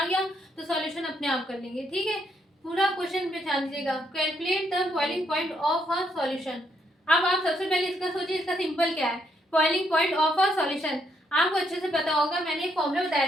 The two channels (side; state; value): both; normal; correlation 0.74